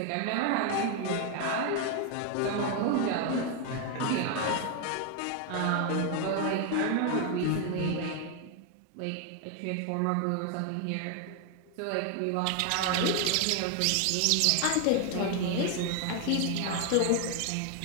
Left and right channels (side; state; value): both; different; correlation 0.01